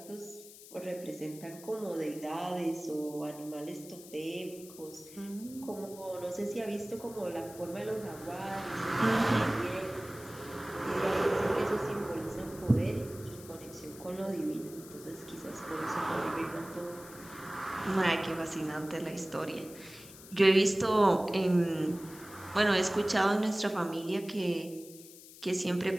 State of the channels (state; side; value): noise; left; hiss, 18 dB below the sound